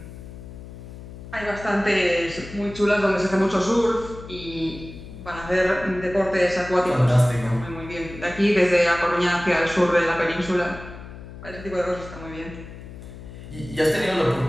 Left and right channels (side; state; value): left; noise; hum, 14 dB below the sound